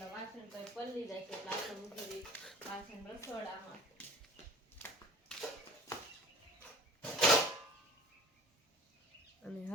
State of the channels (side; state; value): both; normal; correlation 0.45